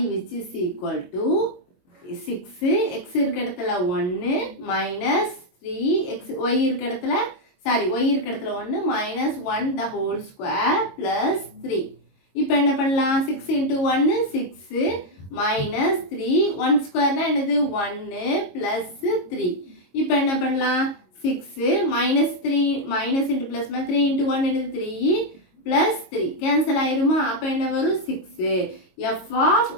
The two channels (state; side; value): late; right; 22 ms